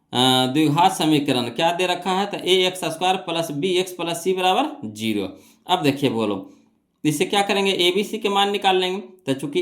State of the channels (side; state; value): both; identical; correlation 1.00